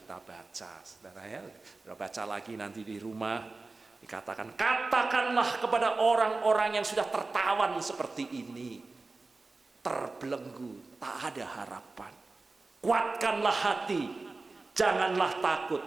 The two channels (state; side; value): quieter; left; 3.6 dB